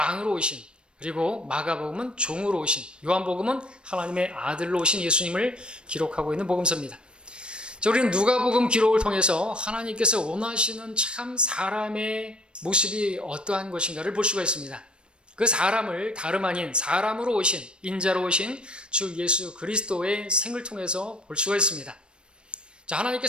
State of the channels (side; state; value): left; late; 0.055 ms